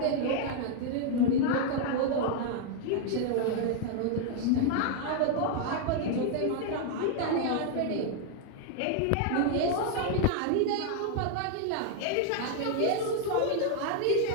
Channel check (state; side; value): different; both; correlation 0.00